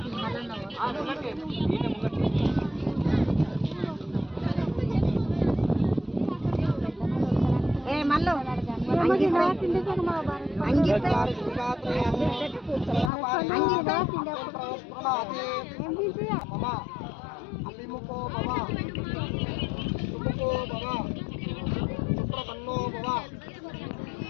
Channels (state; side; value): drops out; right; at 13.1 s